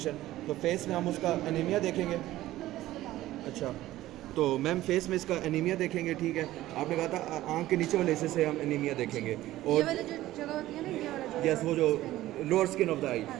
तो फेस में हम उसका एनीमिया देखेंगे। अच्छा, तो मैम फेस में इसका एनीमिया देखेंगे, ठीक है। आपने कहा था आँख के नीचे वाले हिस्से से हम एनीमिया देखेंगे, और ये वाला जो जगह होती है ना, ये वाला यस, वो जो लोअर स्किन ऑफ द आई,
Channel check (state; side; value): quieter; left; 15.4 dB